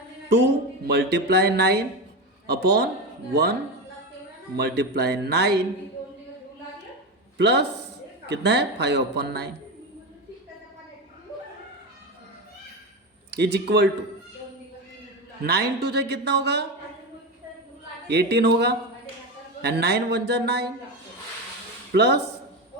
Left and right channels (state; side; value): normal; both; correlation 0.18